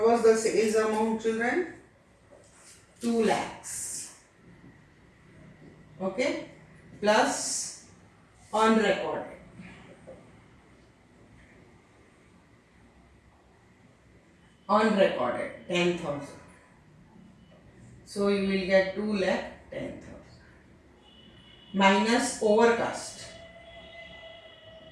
was the sales amount children? 2 lakhs. Okay. Plus unrecorded. Unrecorded 10,000. So you will get 2 lakh 10,000. Minus overcast.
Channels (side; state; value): both; identical; correlation 1.00